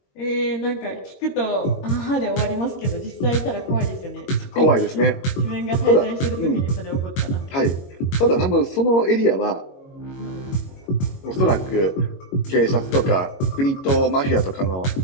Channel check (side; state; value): right; late; 22 ms